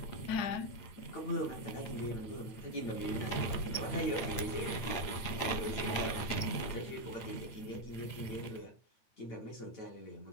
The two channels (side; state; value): right; late; 8.8 ms